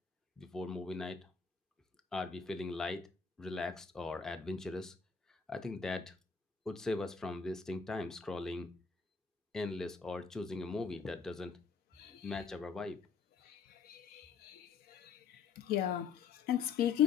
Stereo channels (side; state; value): right; quieter; 5.6 dB